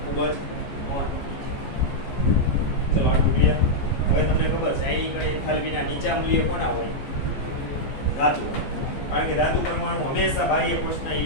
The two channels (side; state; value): right; late; 14 ms